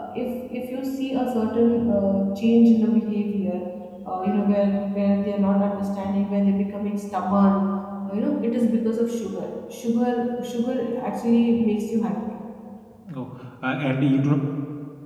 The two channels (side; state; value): both; identical; correlation 1.00